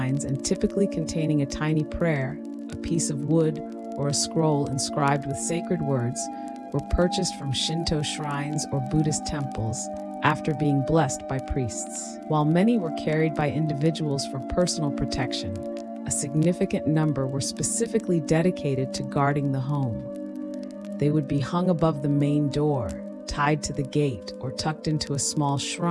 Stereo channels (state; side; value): identical; both; correlation 1.00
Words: and typically containing a tiny prayer, a piece of wood, or a scroll inscribed with sacred words, were purchased from Shinto shrines or Buddhist temples after being blessed by priests. While many were carried by individuals for personal protection, a significant number were specifically dedicated to guarding the home. They would be hung above the main door, tied to the gate, or tucked into a small